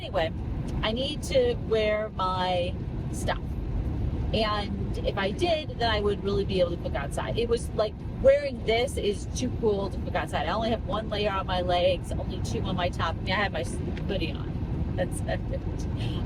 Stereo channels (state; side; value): identical; both; correlation 1.00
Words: I need to wear my stuff. And if I did, then I would really be able to cook outside. It was like wearing this is too cool to cook outside. I only have one layer on my legs, only two on my top. I mean, I have my hoodie on. That's it. I